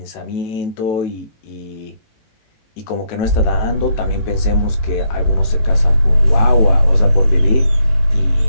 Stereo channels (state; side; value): late; right; 18 ms